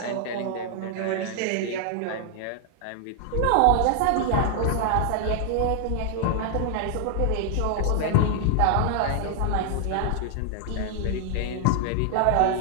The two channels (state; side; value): different; both; correlation -0.01